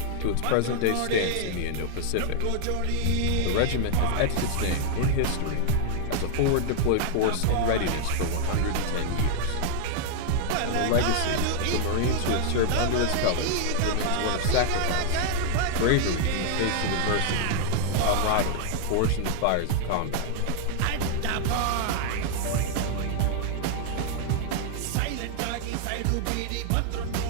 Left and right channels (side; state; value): both; different; correlation 0.00